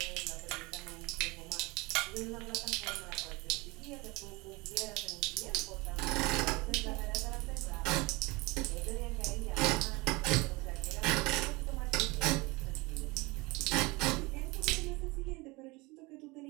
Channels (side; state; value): left; quieter; 24.4 dB